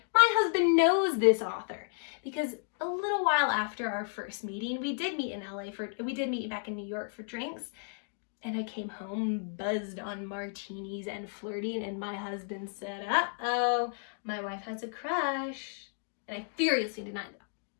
my husband knows this author because a little while after our first meeting, we did meet back in New York for drinks, and I came home buzzed on martinis and flirting, and my husband said, uh-oh, my wife has a crush, and I furiously denied that.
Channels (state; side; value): silent; right; digital silence